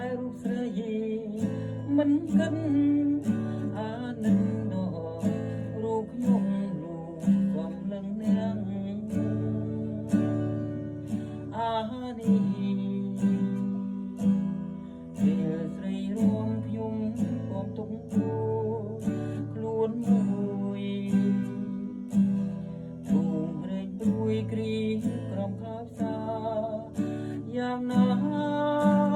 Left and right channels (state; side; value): identical; both; correlation 1.00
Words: លរូបស្រីមិនគិតអានឹងដល់រូបខ្ញុំលោកកំលឹងនាងអានេះពេលស្រីរួមខ្ញុំក៏ទុកខ្លួនមួយទូរែកព្រួយគ្រីក្រំខោផ្សាយ៉ាងណា